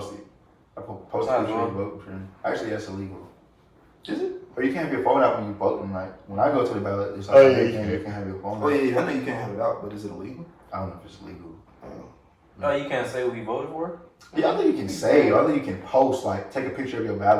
it. I post a picture and vote for him. Actually, that's illegal. Is it? Or you can't have your phone out when you voting. Like when I go to the ballot, it's like you can have your phone out. Oh yeah, I know you can't have it out, but is it illegal? I don't know if it's legal. No, you can't say what you voted for? Yeah, I think you can say. I think you can post. Like take a picture of your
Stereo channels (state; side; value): identical; both; correlation 1.00